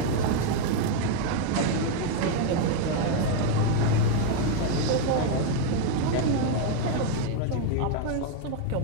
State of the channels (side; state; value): both; different; correlation 0.01